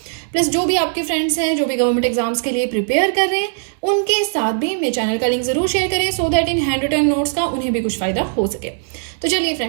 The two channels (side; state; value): left; silent; digital silence